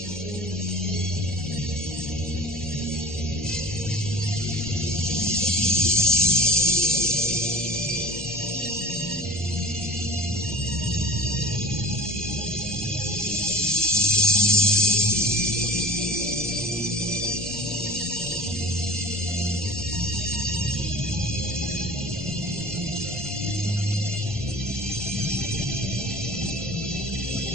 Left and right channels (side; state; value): both; normal; correlation 0.39